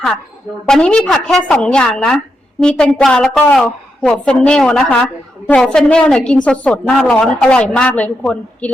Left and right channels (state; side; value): normal; both; correlation 0.84